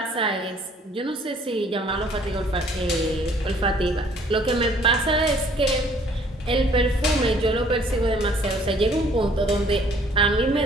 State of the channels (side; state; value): both; normal; correlation 0.58